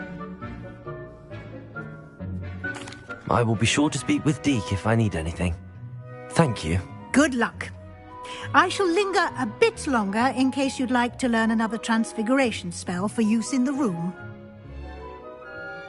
I will be sure to speak with Deke if I need anything. Thank you. Good luck. I shall linger a bit longer in case you'd like to learn another transfiguration spell for use in the room.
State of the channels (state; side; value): identical; both; correlation 1.00